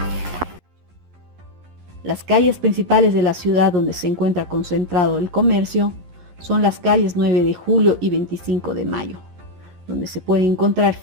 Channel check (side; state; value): left; late; 11 ms